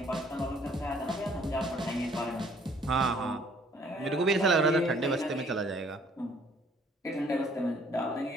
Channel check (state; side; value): normal; both; correlation 0.60